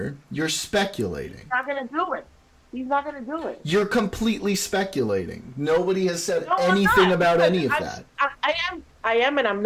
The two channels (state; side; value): identical; both; correlation 1.00